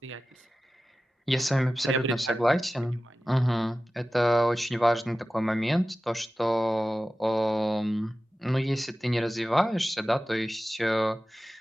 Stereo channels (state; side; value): normal; both; correlation 0.95